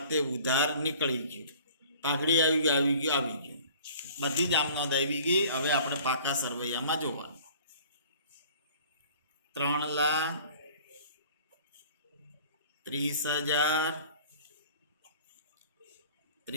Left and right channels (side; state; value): both; inverted; correlation -0.49